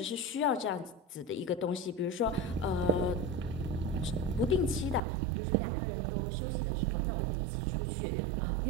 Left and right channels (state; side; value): drops out; left; at 5.0 s